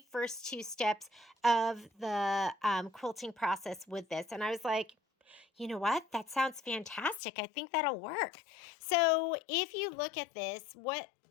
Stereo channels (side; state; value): right; drops out; at 7.2 s